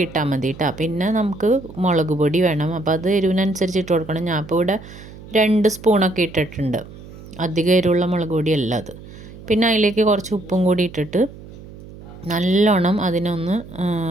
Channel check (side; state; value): right; noise; hum, 17 dB below the sound